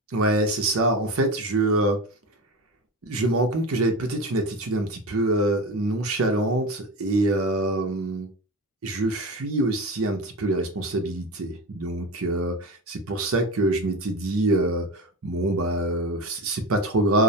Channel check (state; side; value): normal; both; correlation 0.25